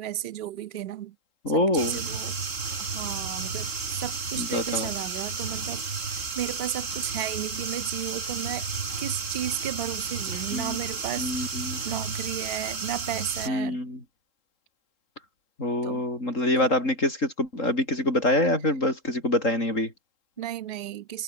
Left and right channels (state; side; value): late; right; 3.8 ms